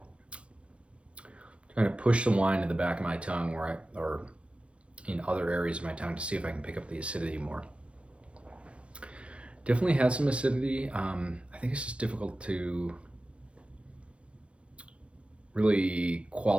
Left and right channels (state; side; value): late; left; 0.060 ms